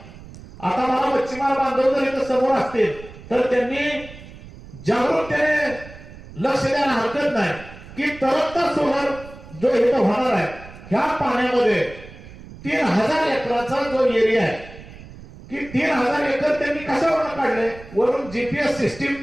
आता मला मच्छीमार बांधव जर इथं समोर असतील तर त्यांनी जागरूकतेने लक्ष द्यायला हरकत नाही की तरंगता सोलार जो इथं होणार आहे ह्या पाण्यामध्ये 3000 एकराचा जो एरिया आहे की 3000 एकर त्यांनी कशावरून काढले, वरून जीपीएस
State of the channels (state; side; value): noise; right; rumble, 17 dB below the sound